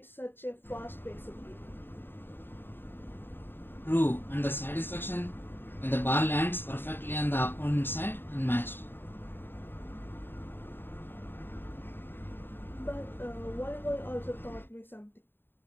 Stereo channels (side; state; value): right; late; 0.098 ms